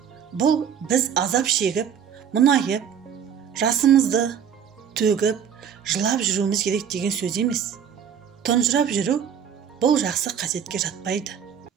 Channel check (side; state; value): left; quieter; 8.1 dB